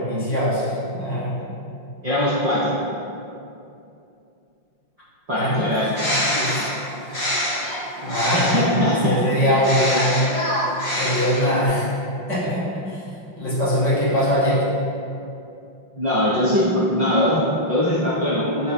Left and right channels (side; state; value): left; late; 5.6 ms